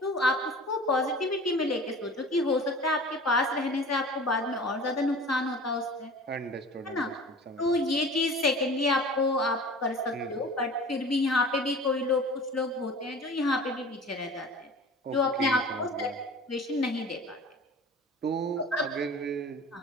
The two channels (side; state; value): both; normal; correlation 0.41